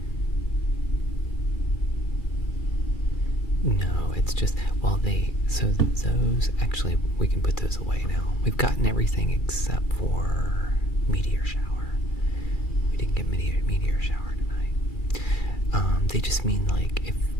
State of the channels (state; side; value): late; right; 2.3 ms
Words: No, it's just, well, so those, actually, we can put those away now. We've gotten everything except for Meteor Shower. We didn't get Meteor Shower tonight. They just mean, like,